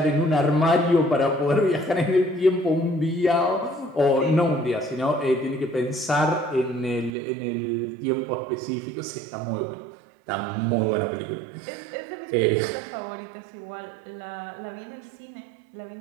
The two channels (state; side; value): drops out; left; at 7.2 s